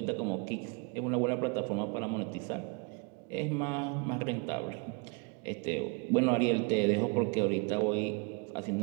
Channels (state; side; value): quieter; left; 33.6 dB